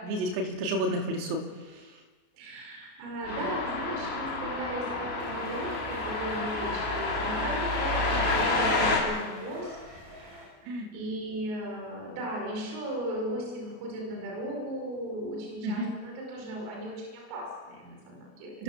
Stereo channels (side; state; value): left; late; 33 ms